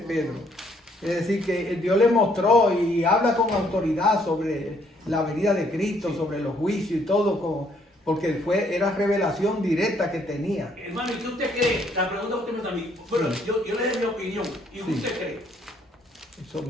Es decir, que Dios le mostró y habla con autoridad sobre la venida de Cristo, sobre los juicios y todo, porque era revelación directa que tenía. Hermano, ¿y qué usted cree? La pregunta que usted me está a mí. Bueno, yo le doy mi opinión. ¿Y usted cree? Eso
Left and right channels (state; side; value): normal; both; correlation 0.67